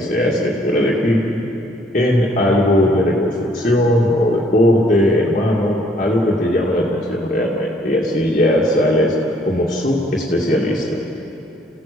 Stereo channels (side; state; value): both; normal; correlation 0.63